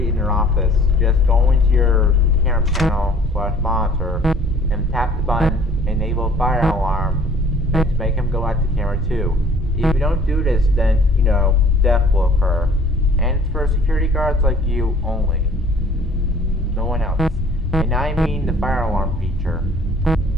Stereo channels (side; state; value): both; normal; correlation 0.53